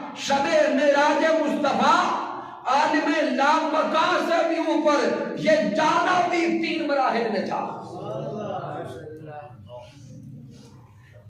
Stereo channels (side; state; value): both; identical; correlation 1.00